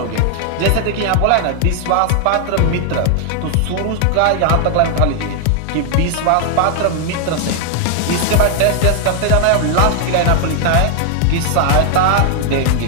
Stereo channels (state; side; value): different; both; correlation 0.00